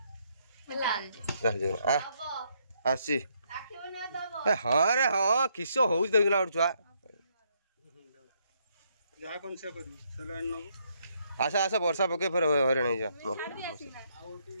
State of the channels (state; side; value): inverted; both; correlation -0.73